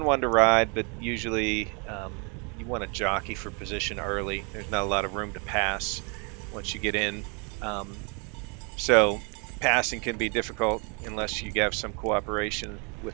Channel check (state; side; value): quieter; left; 34.5 dB